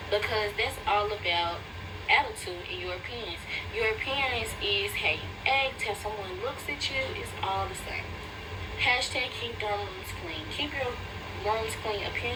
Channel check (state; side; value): identical; both; correlation 1.00